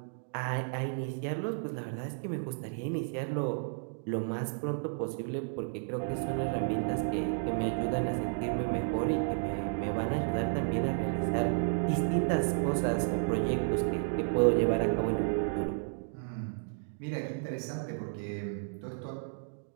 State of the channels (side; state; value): left; silent; digital silence